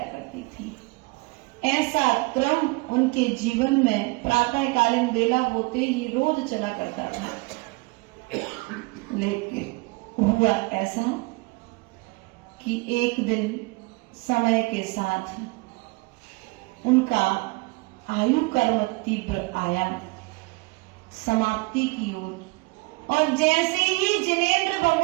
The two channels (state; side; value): quieter; left; 26.3 dB